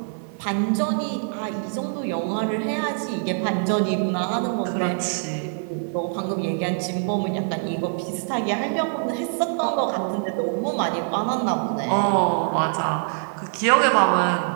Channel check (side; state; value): left; silent; 63 dB below the other